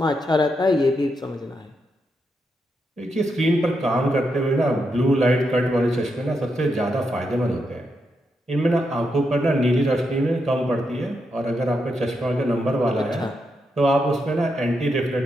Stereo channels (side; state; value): both; normal; correlation 0.83